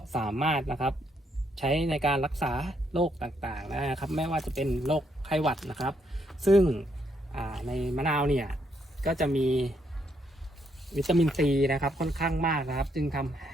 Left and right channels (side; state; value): both; normal; correlation 0.75